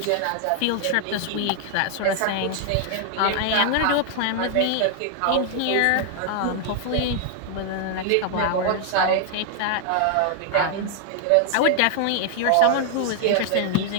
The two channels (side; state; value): both; different; correlation 0.00